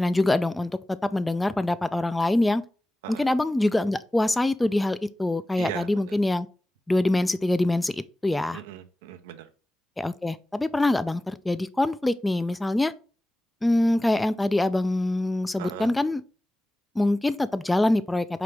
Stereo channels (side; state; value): both; normal; correlation 0.97